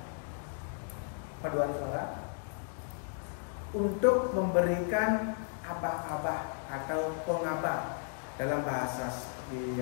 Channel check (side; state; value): right; silent; 55 dB below the other